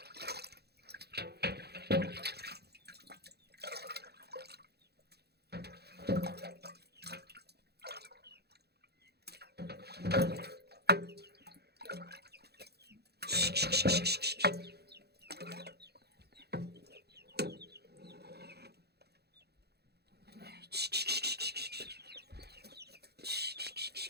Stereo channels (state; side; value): late; left; 0.47 ms